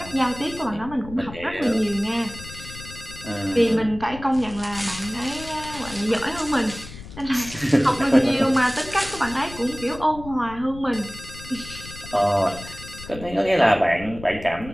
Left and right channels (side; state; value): left; noise; rumble, 14 dB below the sound